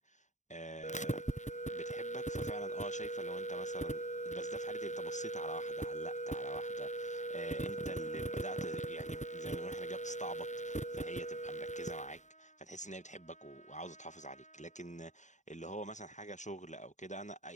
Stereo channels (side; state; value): right; late; 0.35 ms